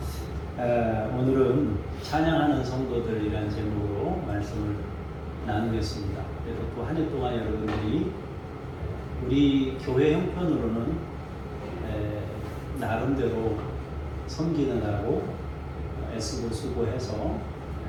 오늘은 찬양하는 성도들이라는 제목으로 말씀을 나누겠습니다. 그래서 또 한 해 동안 여러분들이 우리 교회 형편으로는 나름대로 섬기느라고 애쓰고 수고해서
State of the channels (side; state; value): both; identical; correlation 1.00